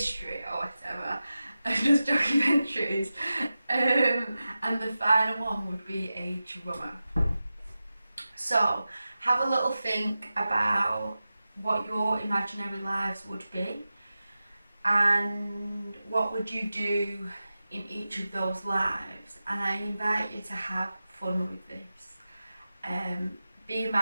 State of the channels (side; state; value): both; inverted; correlation -0.94